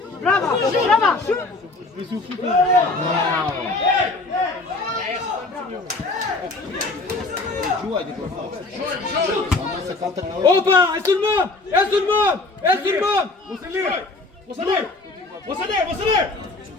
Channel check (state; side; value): quieter; right; 3.2 dB